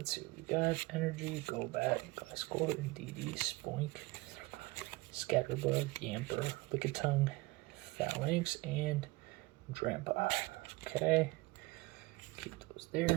see what we got. Energy, Golbat, Gliscor, DD, Spoink, Scatterbug, Yamper, Lickitung, Phalanx, and Drampa. Okay, keep those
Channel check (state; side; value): quieter; left; 22.3 dB